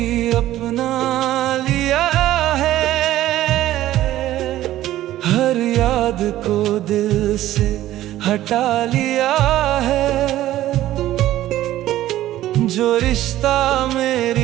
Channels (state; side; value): quieter; left; 14.2 dB